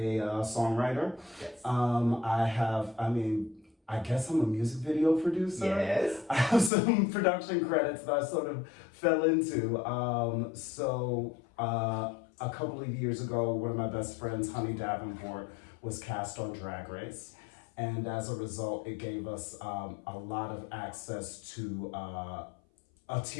songwriter. Yes. I guess I'm a music video producer. Yes. I have some production credits that I sort of fell into. A couple of years ago, one of my best friends, Honey Davenport, was cast on Drag Race. And as a result, it gave us a lot of access to a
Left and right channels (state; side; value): drops out; right; at 6.7 s